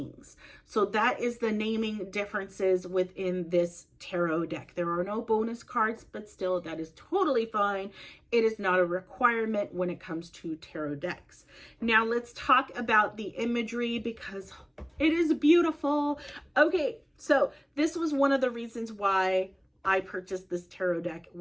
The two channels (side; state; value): both; identical; correlation 1.00